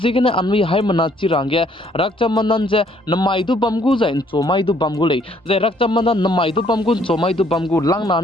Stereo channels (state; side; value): normal; both; correlation 0.64